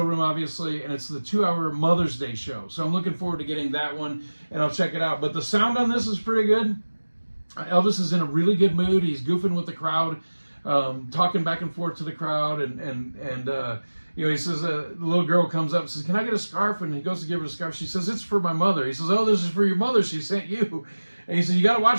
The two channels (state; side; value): inverted; both; correlation -1.00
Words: obviously, and it's the 2-hour Mother's Day show. So I'm looking forward to getting that one, and I'll check it out. But the sound on this is pretty good. Elvis is in a really good mood. He's goofing with the crowd, talking back and forth to the crowd, and he says, the little girl comes up and says, can I get a scarf? And he goes to give her a scarf. She says, it's for my mother. He says, oh, this is for your mother. She sent you. And he said, you got to